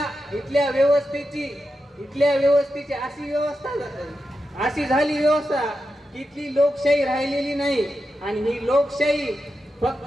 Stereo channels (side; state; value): both; normal; correlation 0.89